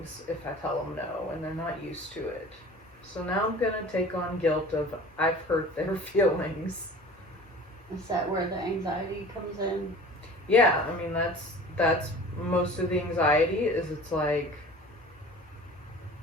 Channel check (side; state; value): both; normal; correlation 0.42